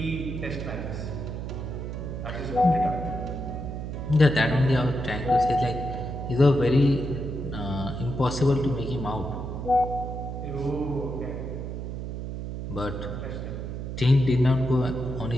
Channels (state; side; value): noise; right; hum, 6 dB below the sound